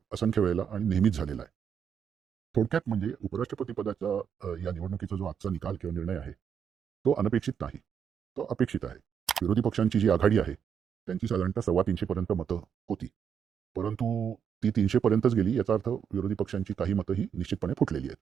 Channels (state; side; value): quieter; left; 7.7 dB